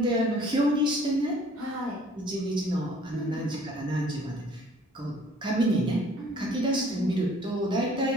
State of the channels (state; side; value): normal; both; correlation 0.55